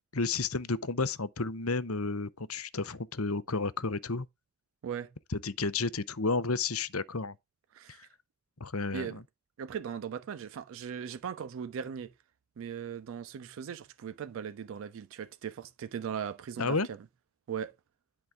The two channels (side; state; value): both; normal; correlation 0.04